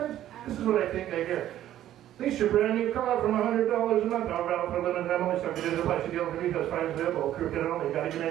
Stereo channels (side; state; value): left; quieter; 12.4 dB